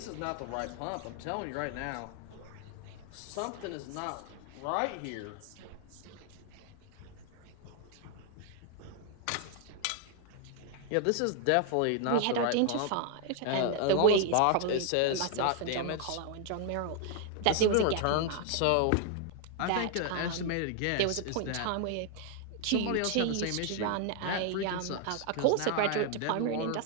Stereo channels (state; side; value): different; both; correlation 0.00